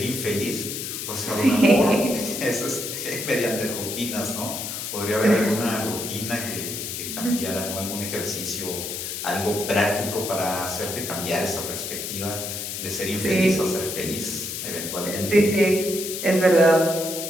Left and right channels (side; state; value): left; noise; hiss, 5 dB below the sound